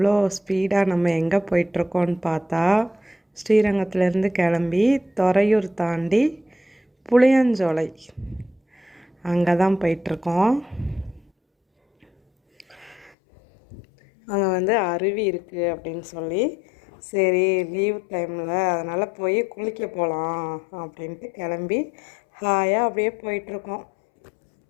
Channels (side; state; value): right; drops out; at 13.1 s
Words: ஸ்பீடாக நம்ம எங்கே போயிட்டுருக்கோன்னு பார்த்தா, ஸ்ரீரங்கத்துலேருந்து கிளம்பி துறையூர் தாண்டி புளியஞ்சோலை அங்கே தான் போயிட்டுருக்கோம். அங்கே அருவி இருக்குது அப்படின்னு சொல்லி, சரி லீவ் டைமில் அதனால் போய் குளிக்க போகலாம் அப்படின்ட்டு கிளம்பி ஹாயாக அப்படியே போயிட்டுருக்கோம்.